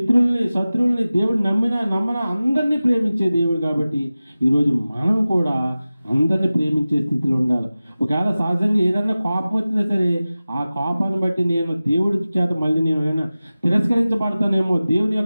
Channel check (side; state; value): both; inverted; correlation -0.96